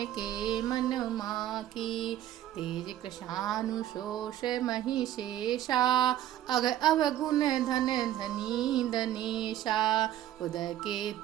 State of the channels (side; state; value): left; quieter; 12.6 dB